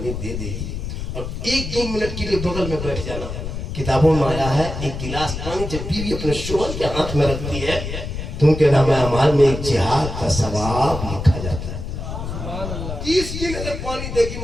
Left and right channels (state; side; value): noise; left; rumble, 6 dB below the sound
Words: दे देगी और 1-2 मिनट के लिए बगल में बैठ जाना। किताबों में आया है एक गिलास पानी जब बीवी अपने शोहर के हाथ में रखती है तो उनके नामे अमाल में एक जिहाद का सवाब लिखा जाता है। 30 दिन अगर पानी देगी